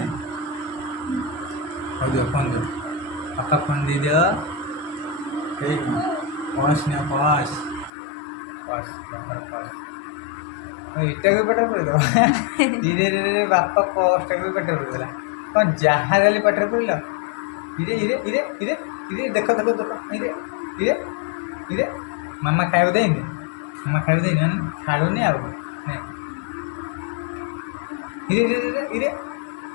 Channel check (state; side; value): drops out; right; at 7.9 s